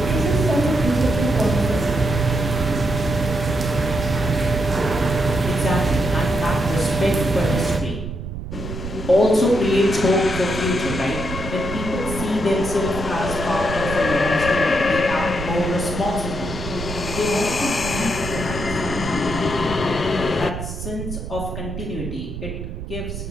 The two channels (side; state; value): right; noise; rumble, 8 dB below the sound